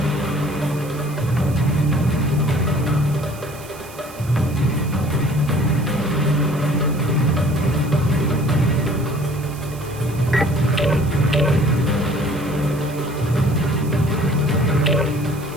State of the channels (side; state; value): right; noise; hiss, 19 dB below the sound